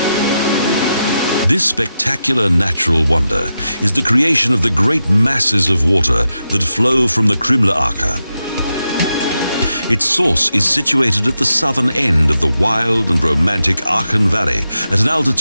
This spectacular natural wonder is the creation of the great masses of water that flow from the Krimmler Ache. Its source is situated at the southern end of the wild and romantic Aachen Valley at an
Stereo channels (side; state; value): both; inverted; correlation -0.88